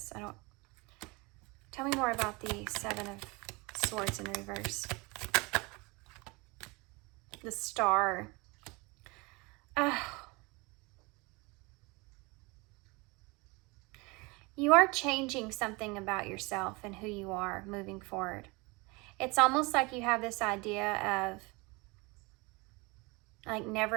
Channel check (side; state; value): left; quieter; 26.4 dB